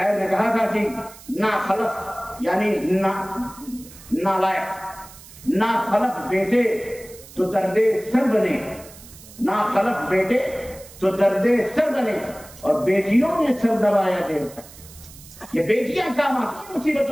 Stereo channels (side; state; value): right; noise; hiss, 19 dB below the sound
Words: نے کہا تھا کہ نا خلف یعنی نالائق، نا خلف بیٹے تو درد سر بنے، نا خلف بیٹے تو درد سر بنے، اور بیٹیوں نے سر دبایا دیر تک. یہ بیٹیاں کام آتی